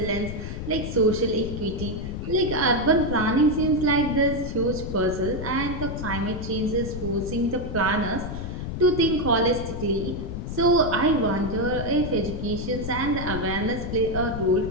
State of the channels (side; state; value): left; noise; rumble, 6 dB below the sound